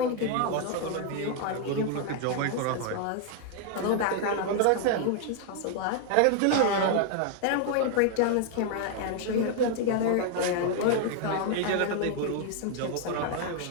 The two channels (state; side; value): different; both; correlation 0.00